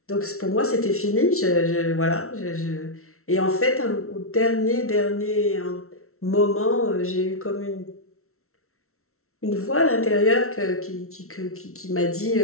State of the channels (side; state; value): right; late; 0.63 ms